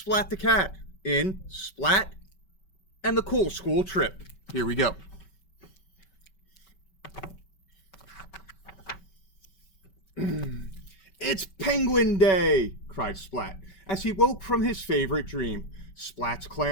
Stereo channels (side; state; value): right; late; 5.2 ms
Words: the cat in Splat and the Cool School Trip. Here we go. It's Penguin Day, cried Splat, as he woke from his favorite dream. Splat's